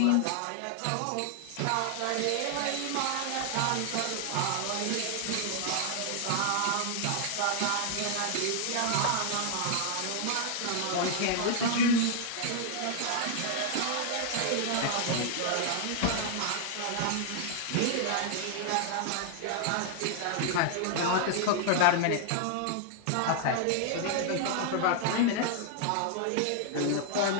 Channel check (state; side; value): different; both; correlation 0.00